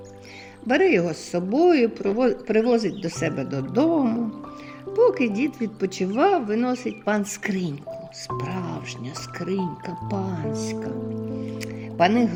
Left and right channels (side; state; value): both; identical; correlation 1.00